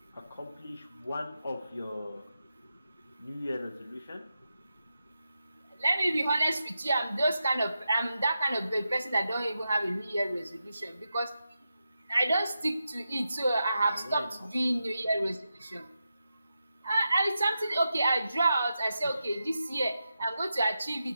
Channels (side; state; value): both; inverted; correlation -0.89